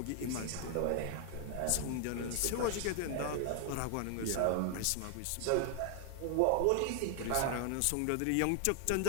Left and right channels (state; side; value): different; both; correlation 0.00